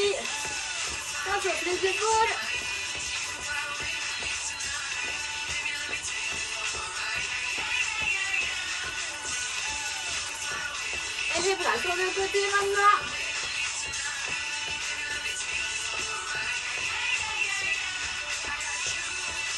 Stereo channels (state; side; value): identical; both; correlation 1.00